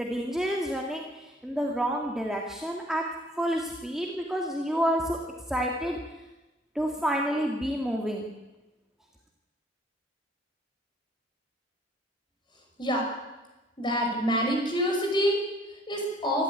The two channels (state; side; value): normal; both; correlation 0.59